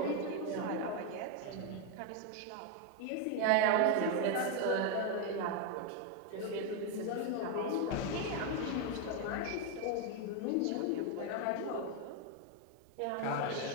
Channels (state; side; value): different; both; correlation 0.01